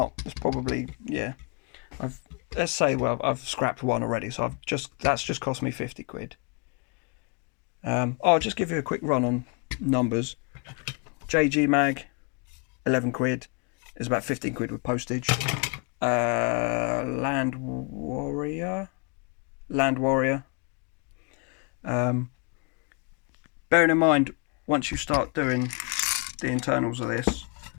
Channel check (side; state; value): right; quieter; 34.9 dB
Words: probably, yeah, let's say, well, I've scrapped one already, so that's just cost me 50 quid. I'll just give you a quick run on numbers. JG mag, 11 quid, is about 15 quid with postage. Land Warrior. Bearing in mind, once you start doing the internals of this,